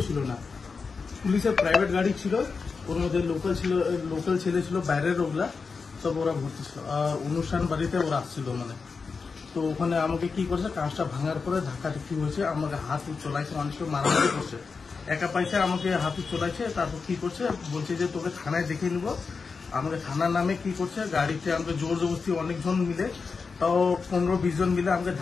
ছিল না, পুলিশের প্রাইভেট গাড়ি ছিল, ওর মধ্যে লোকাল ছেলে ছিল, বাইরের ওগুলা সব ওরা ভর্তি ছিল। আর অনুষ্ঠান বাড়িতে ওরা আসছিল মানে। তো ওখানে আমাকে কি করছে, কাঁচটা ভাঙার পরে ধাক্কাধাক্কি হয়েছে, আমাকে হাত চলাইছে, মানুষকে মারামারি করছে, একা পয়সা আমাকে হাত চলাইছে। তারপর কি করছে, বলছে যে তোকে থানায় দেখে নিবো। আমাকে থানার নামে কি করছে, গাড়িতে আমাকে জোর জবরদস্তি অনেকজন মিলে, তাও 15-20 জন মিলে আমাকে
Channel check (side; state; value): right; quieter; 4.9 dB